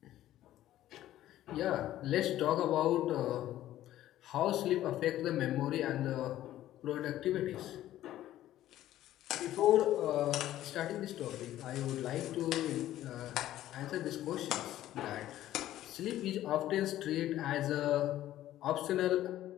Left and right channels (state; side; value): quieter; right; 13.5 dB